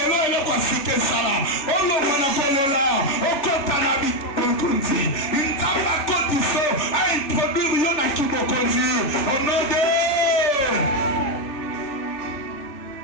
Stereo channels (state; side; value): late; right; 3.4 ms